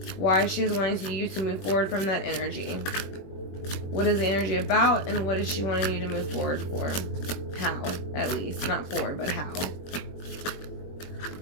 why she is wanting you to move forward from that energy. What is the energy about, and what is she wanting you to move forward for? How, at least. Not for, but how.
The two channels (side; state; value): right; late; 21 ms